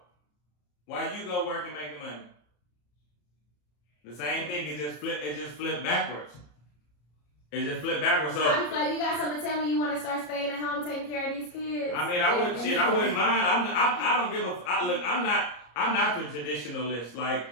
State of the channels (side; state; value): right; late; 34 ms